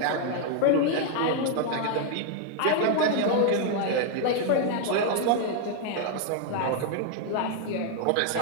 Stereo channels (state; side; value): different; both; correlation 0.00